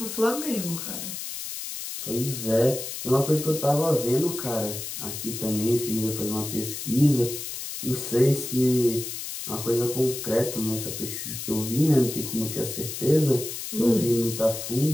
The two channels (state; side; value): noise; left; hiss, 7 dB below the sound